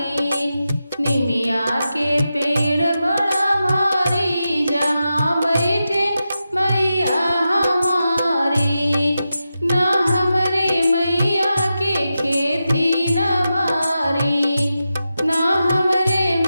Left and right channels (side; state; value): both; inverted; correlation -0.90